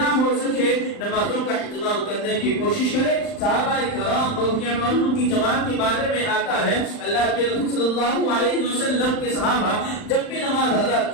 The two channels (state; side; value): late; right; 39 ms